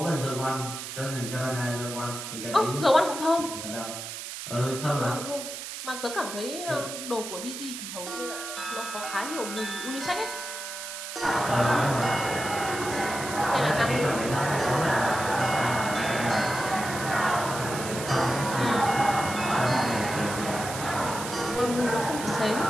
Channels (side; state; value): right; noise; hiss, 8 dB below the sound